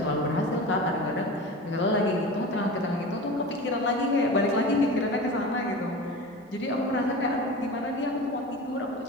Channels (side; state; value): both; normal; correlation 0.31